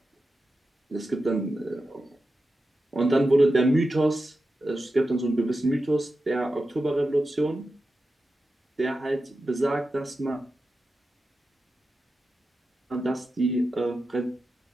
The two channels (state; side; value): normal; both; correlation 0.91